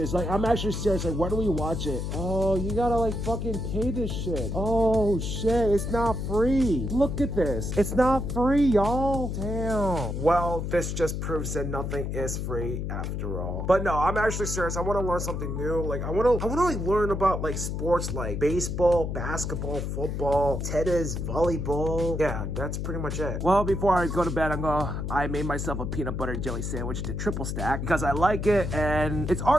Like, I'm actually serious. Like, where do we watch it? Oh, you gotta like fucking pay this shit. Oh shit, it's not free. Look at this. It's not free, y'all. Damn. Well, this just proves that nothing is free after all. But no, I'm actually serious. I want to learn something new. Like, I want to like learn about like sports like baseball, basketball, football, tennis, volleyball. Yeah, that's pretty much it. Well, before I go to bed, I made myself a peanut butter jelly sandwich to triple stack because I like it, and it's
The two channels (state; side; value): noise; left; hum, 3 dB below the sound